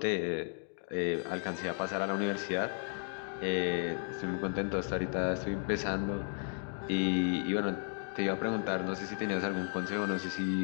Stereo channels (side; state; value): right; silent; 55 dB below the other